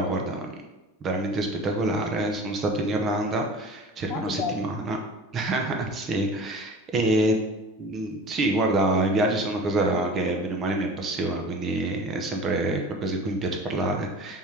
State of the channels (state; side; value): normal; both; correlation 0.39